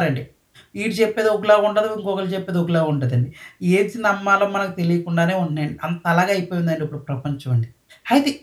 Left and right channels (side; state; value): both; identical; correlation 1.00